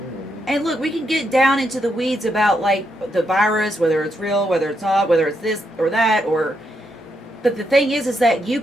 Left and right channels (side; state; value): both; normal; correlation 0.80